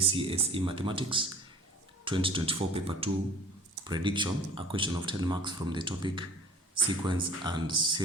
Mathematics 2024 Paper 2 Prediction, a question of 10 marks from the topic Sequence and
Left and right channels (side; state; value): both; normal; correlation 0.47